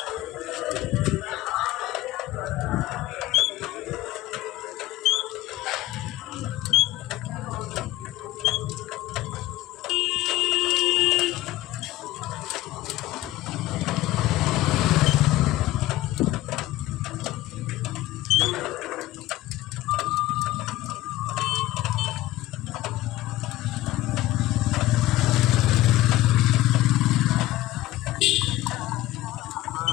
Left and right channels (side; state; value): right; quieter; 15.8 dB